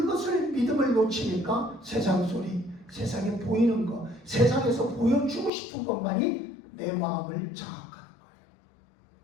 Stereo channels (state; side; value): drops out; right; at 5.5 s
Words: 믿음을 놓치니까 세상 소리, 세상에 보이는 것, 세상에서 보여주고 싶은 것만이 내 마음을 장악하는 거예요.